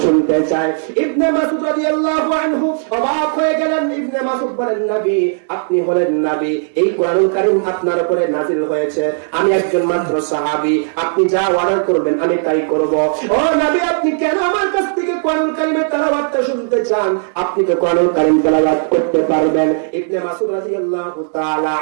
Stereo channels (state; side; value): silent; left; 69 dB below the other